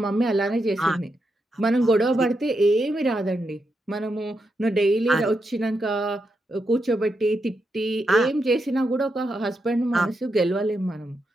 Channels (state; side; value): normal; both; correlation 0.84